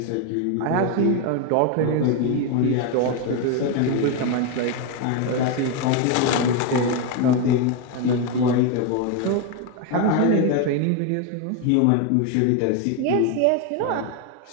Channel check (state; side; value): different; both; correlation 0.02